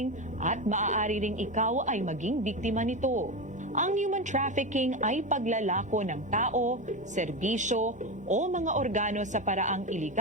at maaari ring ikaw ay maging biktima nito. Ang human trafficking ay paglalako ng tao, serbisyo o mga organo sa paraang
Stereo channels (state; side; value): normal; both; correlation 0.17